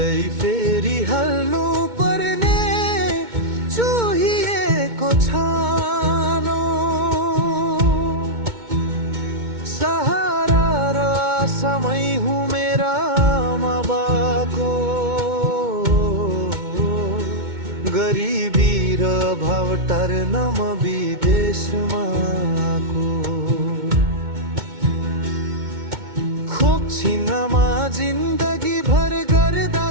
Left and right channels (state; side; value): late; left; 2.2 ms